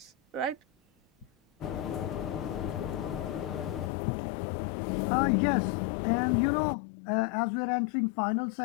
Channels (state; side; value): drops out; right; at 3.9 s